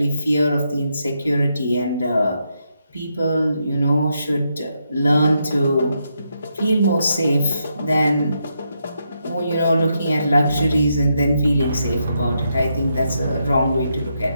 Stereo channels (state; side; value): inverted; both; correlation -0.81